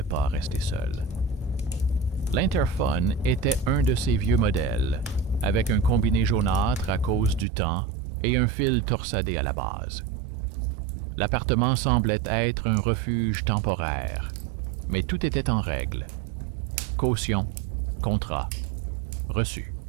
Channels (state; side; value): drops out; left; at 7.5 s